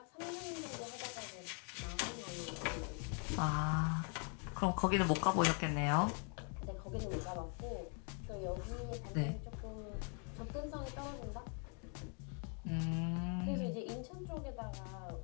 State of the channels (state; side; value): quieter; right; 39.2 dB